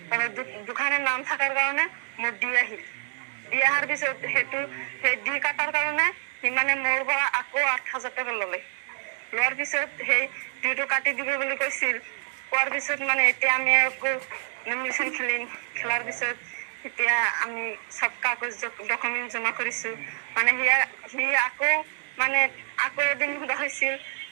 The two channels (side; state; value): left; silent; digital silence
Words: দুখানে নাম থকাৰ কাৰণে মোৰ দি আহিল। দি অহাৰ পিছত সেই দি কাটাৰ কাৰণে সি মানে মোৰ পৰা আকৌ ৮,০০০ টকা ল'লে। লোৱাৰ পিছত সেই ডিটো কাটি দিব বুলি কৈছিল। কোৱাৰ পিছত মানে এতিয়া আমি আকৌ নমিনেশ্যন খেলাৰ পিছত এতিয়া আমি চব কাগজ ডকুমেণ্ট জমা কৰিছো। মানে সি আকৌ এদিন সোধা হৈছিল,